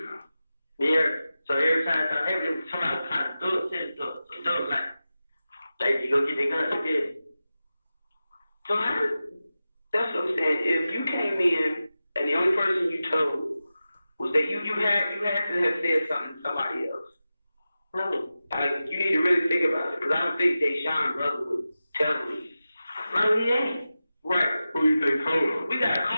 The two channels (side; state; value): both; inverted; correlation -0.93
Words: Yeah. So every time something happens, somebody will call it do it. Like, you go get the gun, you get it. So that's what I'm saying. If you came in and the only person you told was that you had to have said something to somebody else. No. Like, you need to really think about it. Because I don't think Deshaun brother would tell me. No, he ain't. Right. Who you think told him? We got a